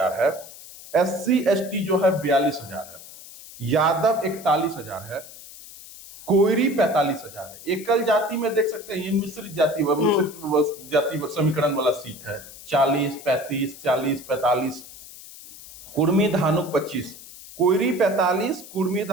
है, SC ST जो है 42,000 है, यादव 41,000 है, कोयरी 45,000 है। एकल जाति में देख सकते हैं, ये मिश्रित जाति समीकरण वाला सीट है। 40, 35, 40, 45, कुर्मी धानुक 25, कोयरी 45, कुर्मी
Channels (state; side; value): noise; left; hiss, 17 dB below the sound